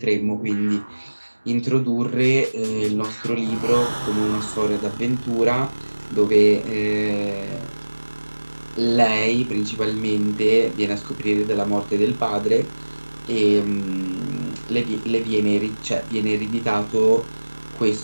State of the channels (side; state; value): both; inverted; correlation -1.00